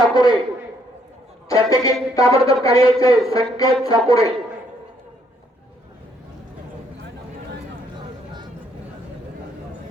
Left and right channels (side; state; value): both; normal; correlation 0.69